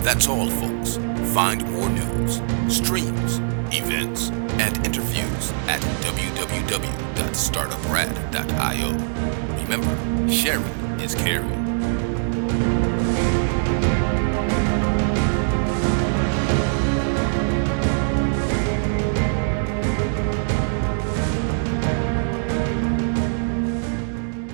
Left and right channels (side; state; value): left; silent; 64 dB below the other